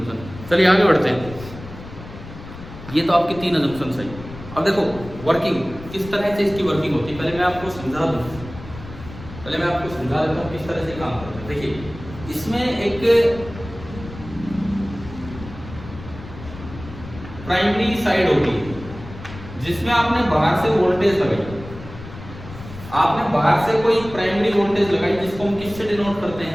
चलिए आगे बढ़ते हैं। ये तो आपकी 3 अजम्पशन सही। अब देखो वर्किंग किस तरह से इसकी वर्किंग होती है, पहले मैं आपको समझा दूँ, देता हूँ किस तरह से काम करते हैं। देखिए इसमें एक प्राइमरी साइड होगी जिसमें आपने बाहर से वोल्टेज लगाई, आपने बाहर से कोई प्राइमरी वोल्टेज लगाई जिसको हम किससे डिनोट करते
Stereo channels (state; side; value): noise; left; rumble, 14 dB below the sound